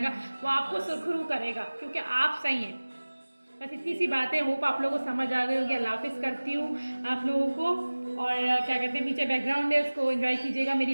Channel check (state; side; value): inverted; both; correlation -1.00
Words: वो आपको सुरखरू करेगा क्योंकि आप सही हैं। बस इतनी सी बातें, होप आप लोगों को समझ आ गई होगी। अल्लाह हाफिज़ करती हूँ आप लोगों को। और क्या कहते हैं, पीछे बैकग्राउंड है उसको एंजॉय कीजिएगा, मेरी